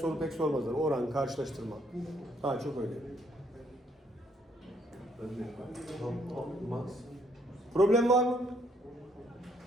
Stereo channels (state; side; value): normal; both; correlation 0.69